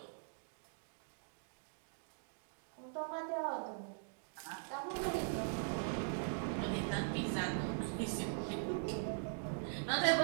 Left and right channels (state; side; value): silent; left; digital silence